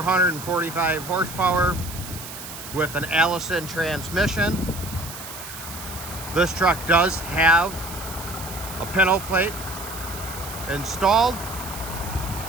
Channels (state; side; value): noise; right; hiss, 11 dB below the sound